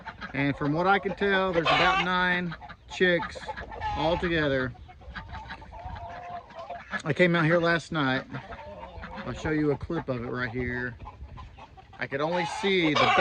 And from what I can tell, there's about 9 chicks all together. I came out here last night. I'll show you a clip of it right here. I could only see the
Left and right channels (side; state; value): both; identical; correlation 1.00